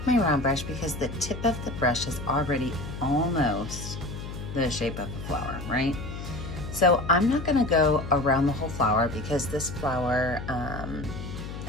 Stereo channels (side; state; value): left; noise; hum, 9 dB below the sound